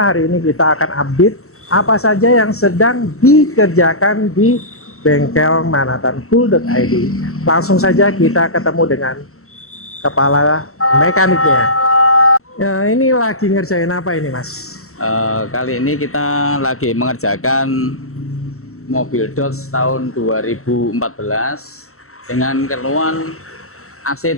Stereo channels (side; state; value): right; late; 0.63 ms